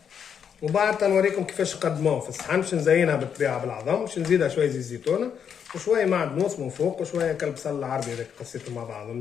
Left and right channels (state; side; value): quieter; right; 7.7 dB